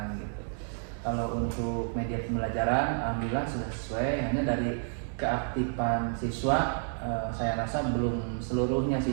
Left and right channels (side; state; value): left; silent; 58 dB below the other